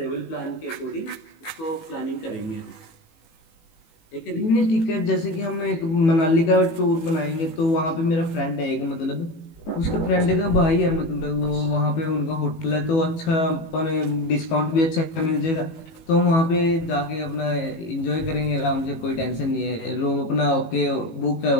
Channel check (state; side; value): late; right; 18 ms